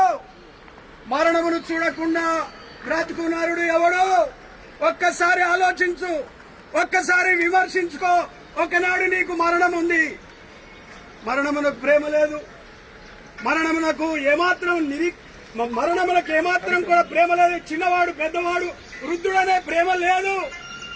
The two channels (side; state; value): both; identical; correlation 1.00